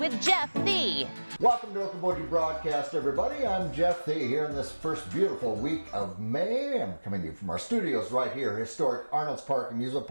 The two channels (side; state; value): both; inverted; correlation -1.00